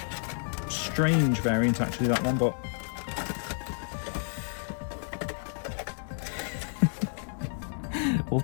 strange variant actually, that one, but we'll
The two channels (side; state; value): right; silent; digital silence